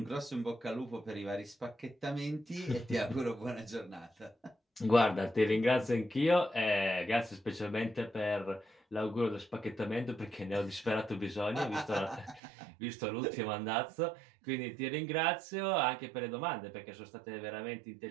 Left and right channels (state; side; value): drops out; left; at 12.4 s